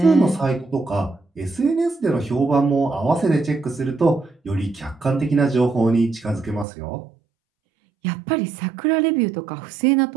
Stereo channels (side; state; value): left; drops out; at 6.7 s